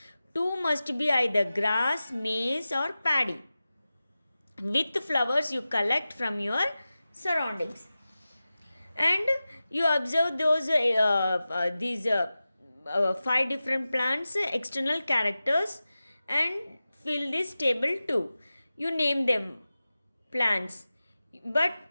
2 must be either grass, maize or paddy. With flowers you collect from your surroundings. And you observe those these 5 different plants, external characters, and fill this table 2. You name them plants. But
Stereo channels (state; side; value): inverted; both; correlation -0.95